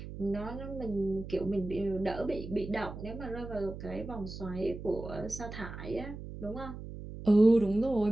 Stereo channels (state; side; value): noise; right; hum, 10 dB below the sound